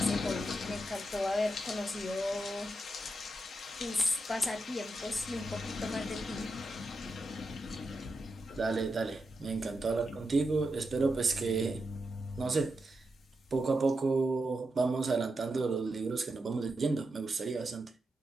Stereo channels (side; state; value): both; normal; correlation 0.87